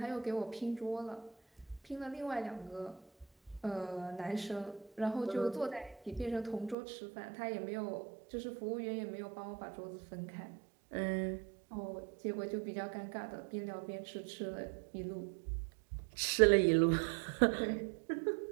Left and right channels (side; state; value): left; drops out; at 6.8 s